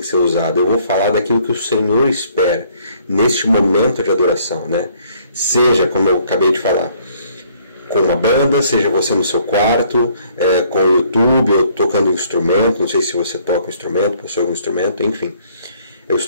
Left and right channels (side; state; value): both; inverted; correlation -0.63